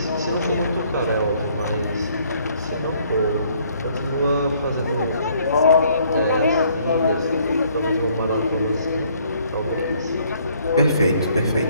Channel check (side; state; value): both; inverted; correlation -0.64